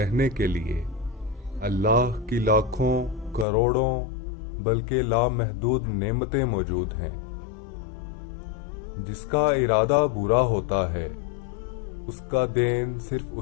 کے لیے اللہ کی لاکھوں کروڑوں بلکہ لامحدود نعمتیں موجود ہیں۔ جس کا ارادہ برا ہوتا ہے اس کا دین صرف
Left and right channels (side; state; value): right; drops out; at 3.5 s